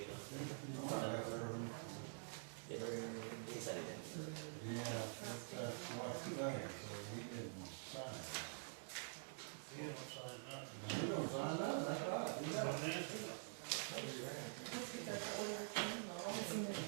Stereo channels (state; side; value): silent; left; digital silence